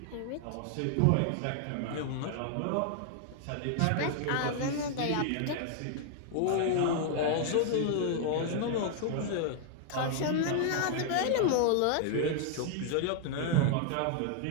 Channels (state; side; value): different; both; correlation 0.00